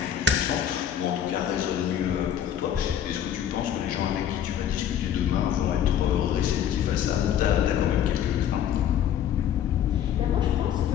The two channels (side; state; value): right; quieter; 9.8 dB